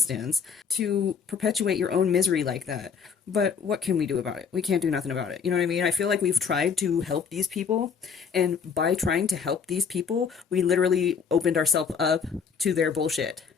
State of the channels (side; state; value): right; quieter; 6.3 dB